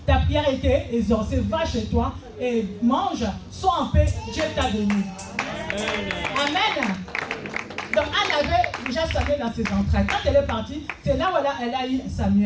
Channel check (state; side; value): identical; both; correlation 1.00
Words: ta prière a été exaucée. Va chez toi et mange, sois en paix, Dieu t'a béni. Amen. Donc Anne avait déjà Samuel dans ses entrailles. Quand elle est partie, c'est là où elle a eu